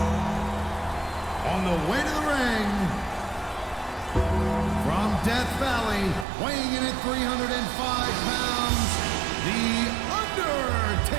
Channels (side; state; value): left; drops out; at 6.2 s